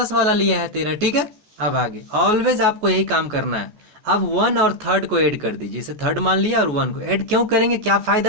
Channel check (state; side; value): late; left; 14 ms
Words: वाला लिया है 13। ठीक है, अब आगे ऑलवेज आपको यही काम करना है। अब 1 और 3 को ऐड कर दीजिए, इसे 3 मान लिया और 1 को ऐड क्यों करेंगे, क्या